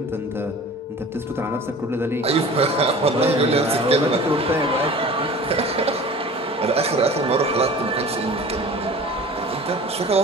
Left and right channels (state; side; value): normal; both; correlation 0.42